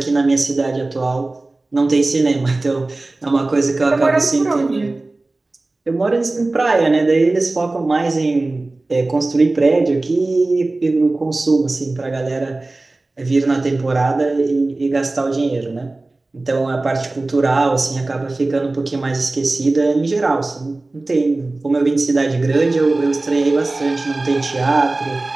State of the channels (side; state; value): left; quieter; 3.1 dB